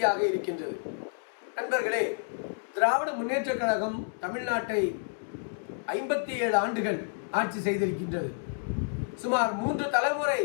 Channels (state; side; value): silent; right; digital silence